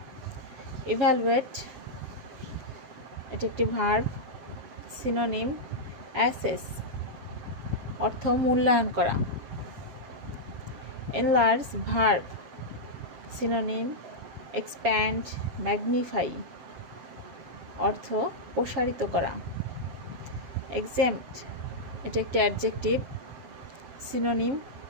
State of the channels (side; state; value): left; late; 7.3 ms